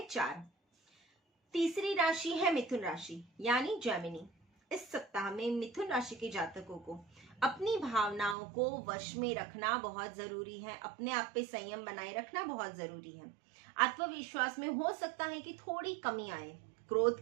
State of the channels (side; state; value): left; drops out; at 8.3 s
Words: 4। तीसरी राशि है मिथुन राशि यानी जेमिनी। इस सप्ताह में मिथुन राशि के जातकों को अपनी भावनाओं को वश में रखना बहुत जरूरी है। अपने आप पे संयम बनाए रखना बहुत जरूरी है। आत्मविश्वास में हो सकता है कि थोड़ी कमी आए।